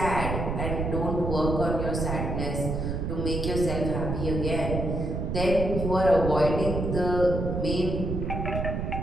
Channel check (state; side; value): noise; right; rumble, 2 dB below the sound